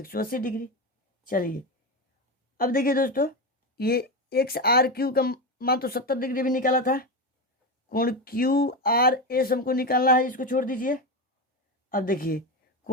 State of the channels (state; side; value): normal; both; correlation 0.17